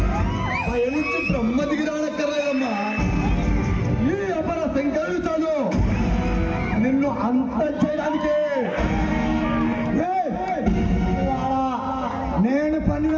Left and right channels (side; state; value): both; identical; correlation 1.00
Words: బ్రహ్మ దిగిరానక్కర్లేదమ్మా. ఈ అపర శంకరుడు నిన్ను అంత చేయడానికి నేను పన్నిన